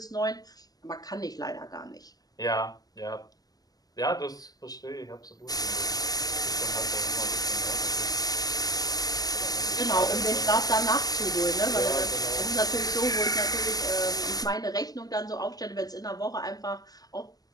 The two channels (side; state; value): right; late; 0.18 ms